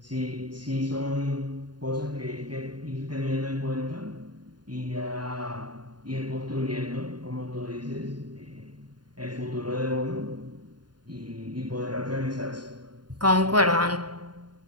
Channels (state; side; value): late; left; 0.70 ms